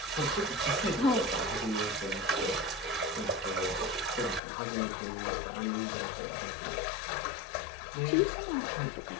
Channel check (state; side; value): drops out; right; at 4.4 s